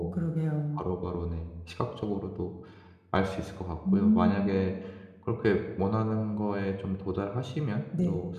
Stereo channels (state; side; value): identical; both; correlation 1.00